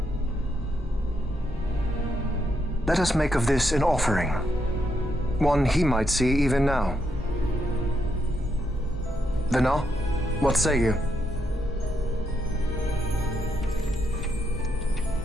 Let us make of this an offering. One he might see even now. Vena, what say you?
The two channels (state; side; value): normal; both; correlation 0.79